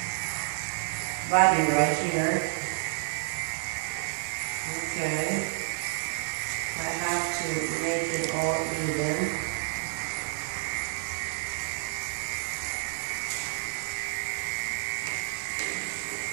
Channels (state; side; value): silent; left; 58 dB below the other